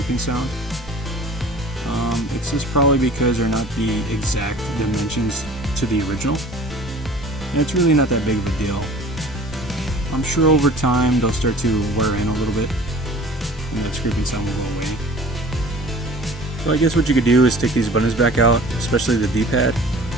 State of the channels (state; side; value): normal; both; correlation 0.46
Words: sound. It's just probably because they're not the exact dimensions to the original. And it's really not that big of a deal. I'm sure over time they'll start to wear in a little bit and that scraping sound will go away. So I guess what you could do is take these buttons back out, especially the D-pad,